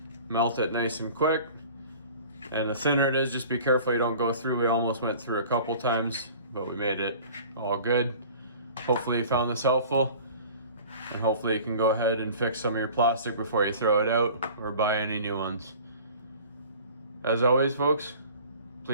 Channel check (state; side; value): inverted; both; correlation -0.44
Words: Melt it nice and quick. And the thinner it is, just be careful you don't go through. We almost went through a couple times, but we made it all good. Hopefully you found this helpful, and hopefully you can go ahead and fix some of your plastic before you throw it out or buy any new ones. As always folks,